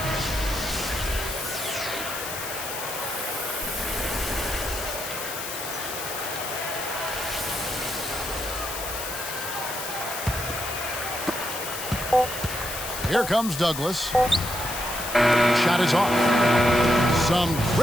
Here comes Douglas. Shot is off. Some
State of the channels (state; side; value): noise; left; hiss, 7 dB below the sound